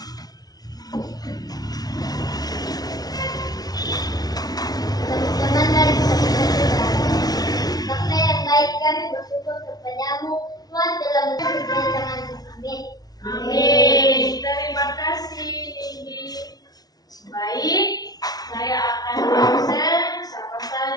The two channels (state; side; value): late; right; 0.19 ms